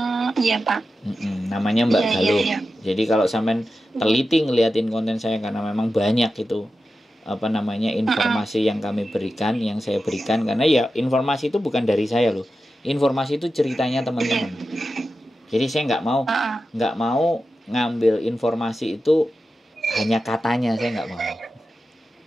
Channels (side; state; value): both; normal; correlation 0.92